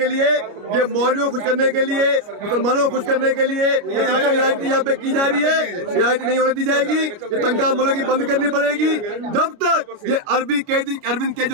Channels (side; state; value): left; late; 29 ms